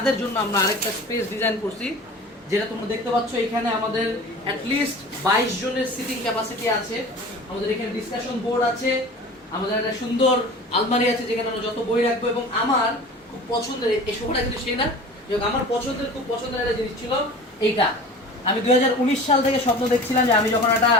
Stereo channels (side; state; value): both; normal; correlation 0.39